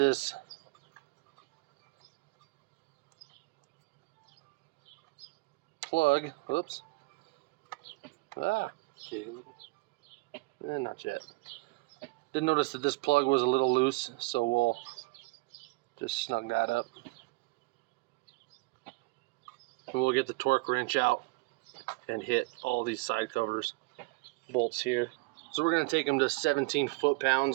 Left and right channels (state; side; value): quieter; left; 26.0 dB